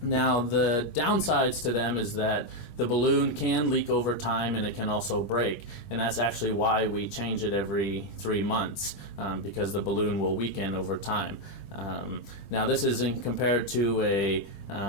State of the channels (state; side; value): late; right; 20 ms